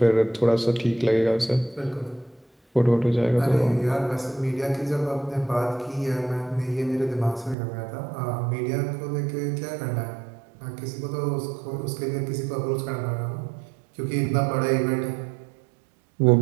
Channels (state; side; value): drops out; left; at 7.6 s